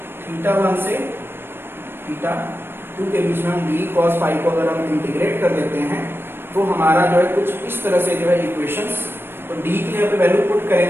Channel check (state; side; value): late; left; 0.10 ms